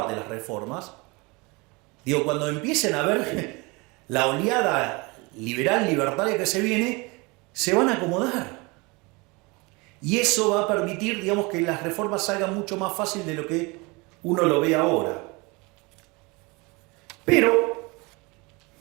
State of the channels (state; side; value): quieter; left; 26.5 dB